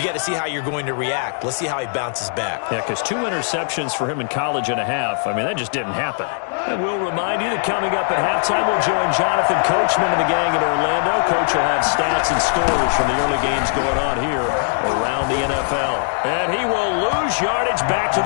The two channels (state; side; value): silent; right; digital silence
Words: got to see how you're going to react. Let's see how he bounces back. Yeah, because 2 interceptions for him in college and a half. I mean, that just didn't happen. And we'll remind you that coming up at halftime, we'll join Jonathan Coachman and the gang in Orlando. Coach will have stats and scores from the early games going on here around the NFL. And he will lose yardage back to